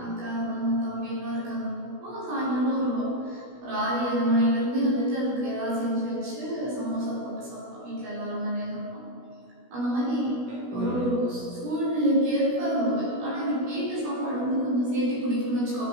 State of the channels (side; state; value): left; late; 16 ms